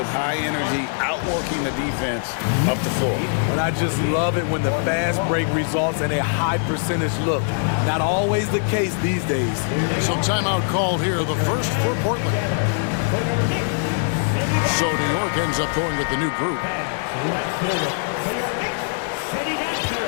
high energy, outworking the defense up the floor. And I just love it when the fast break results in a high percentage look. Not always the case these days. So timeout called here, the first for Portland. So New York ends up going with the new group.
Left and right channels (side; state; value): right; silent; digital silence